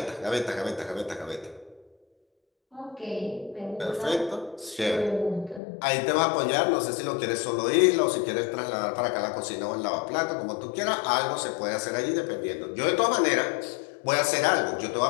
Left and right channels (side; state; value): right; drops out; at 5.6 s